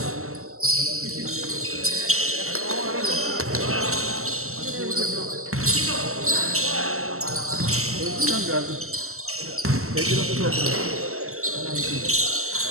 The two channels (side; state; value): left; late; 0.63 ms